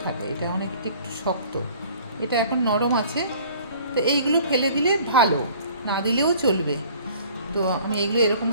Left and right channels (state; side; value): inverted; both; correlation -0.51